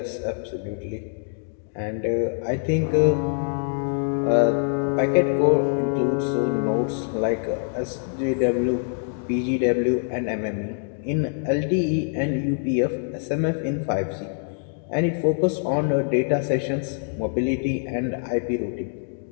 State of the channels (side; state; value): right; silent; 62 dB below the other